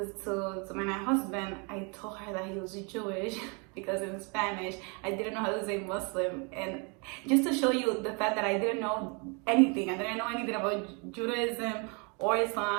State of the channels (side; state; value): left; quieter; 33.2 dB